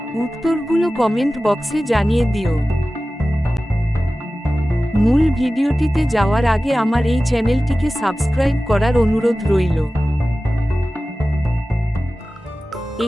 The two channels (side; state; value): both; normal; correlation 0.96